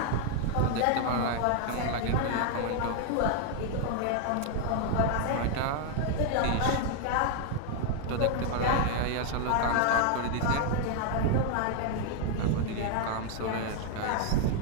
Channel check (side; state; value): both; different; correlation 0.00